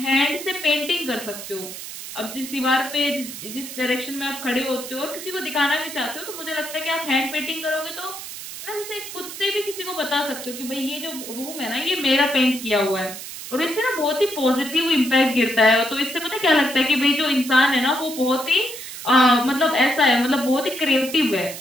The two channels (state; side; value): noise; right; hiss, 10 dB below the sound